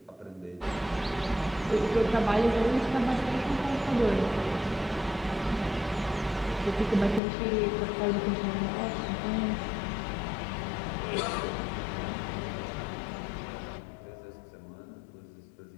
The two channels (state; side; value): drops out; right; at 7.2 s